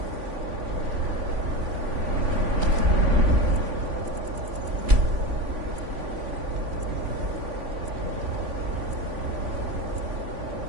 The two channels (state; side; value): late; left; 3.5 ms